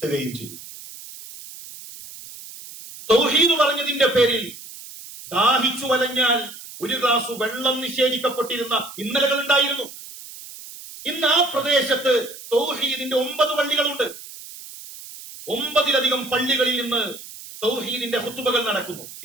ചെയ്യും. തൗഹീദ് പറഞ്ഞതിന്റെ പേരിൽ ദാഹിച്ചു വലഞ്ഞാൽ ഒരു ഗ്ലാസ് വെള്ളം നിഷേധിക്കപ്പെട്ടിരുന്ന ഇന്നലകൾ ഉണ്ടായിരുന്നു. ഇന്ന് ആ പ്രദേശത്ത് തൗഹീദിന്റെ 9 പള്ളികളുണ്ട്. 9-ലധികം പള്ളികളിൽ നിന്ന് തൗഹീദിന്റെ ഖുത്ബകൾ നടക്കുന്നു.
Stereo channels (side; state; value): right; noise; hiss, 15 dB below the sound